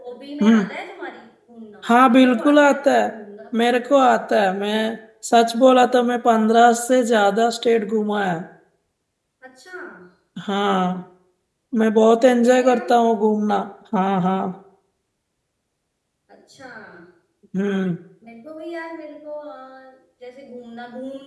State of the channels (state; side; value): identical; both; correlation 1.00